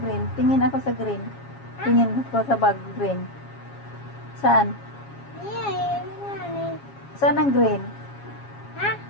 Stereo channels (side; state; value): right; late; 7.3 ms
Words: Tingin ako sa green. Tingin ko sa bag green. Saan? Saan ang green? Ha?